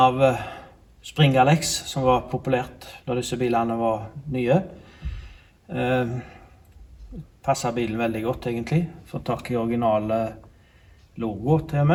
Spring Alex, som var populært når disse bilene var nye. Passer bilen veldig godt egentlig. Får tak i originale logo til og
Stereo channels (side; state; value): both; identical; correlation 1.00